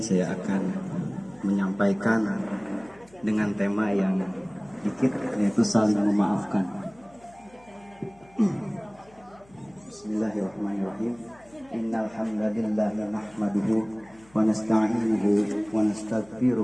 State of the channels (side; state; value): left; noise; hum, 28 dB below the sound